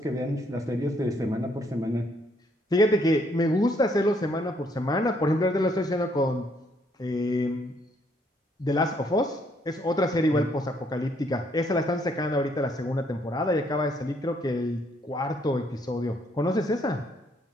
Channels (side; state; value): both; normal; correlation 0.69